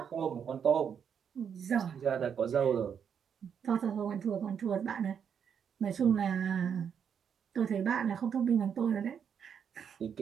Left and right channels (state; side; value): quieter; left; 7.6 dB